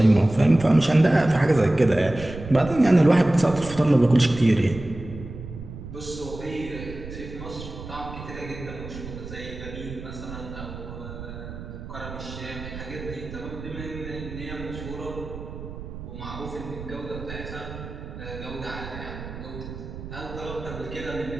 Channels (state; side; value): noise; right; rumble, 11 dB below the sound